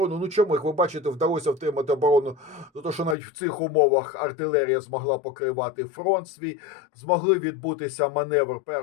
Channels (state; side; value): drops out; right; at 3.2 s